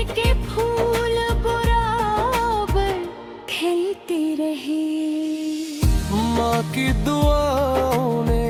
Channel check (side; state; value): both; identical; correlation 1.00